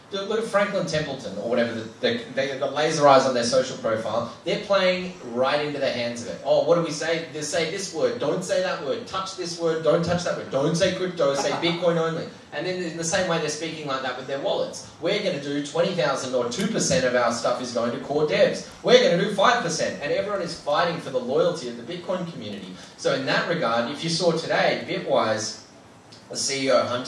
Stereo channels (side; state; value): both; identical; correlation 1.00